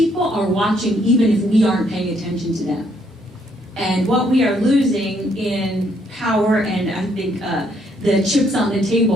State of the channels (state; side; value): normal; both; correlation 0.70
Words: are watching even if we aren't paying attention to them. And what we are losing in power, and I think the chips on the